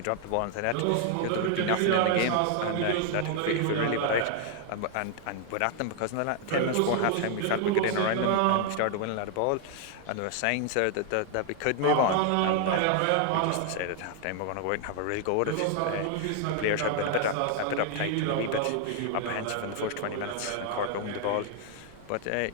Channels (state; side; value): different; both; correlation 0.00